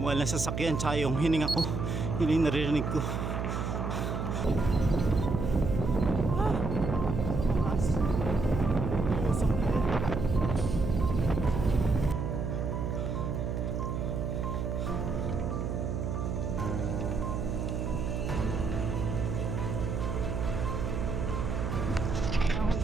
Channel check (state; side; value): noise; right; hum, 2 dB below the sound